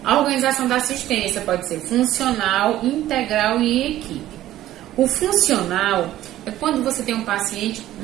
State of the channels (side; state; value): left; quieter; 13.9 dB